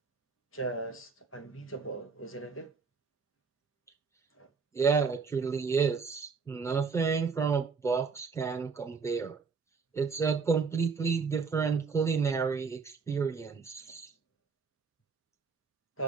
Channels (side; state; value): left; quieter; 5.2 dB